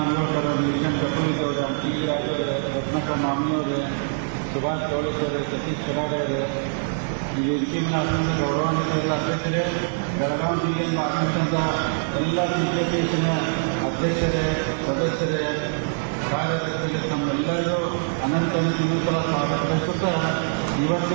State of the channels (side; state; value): left; silent; 63 dB below the other